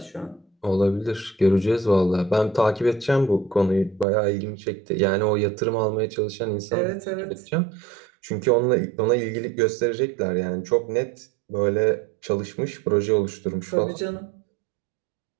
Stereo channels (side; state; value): left; drops out; at 4.0 s